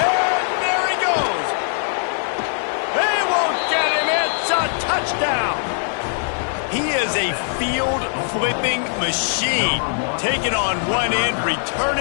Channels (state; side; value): silent; right; digital silence